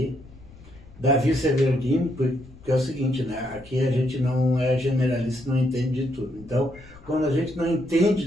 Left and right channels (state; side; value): noise; left; rumble, 22 dB below the sound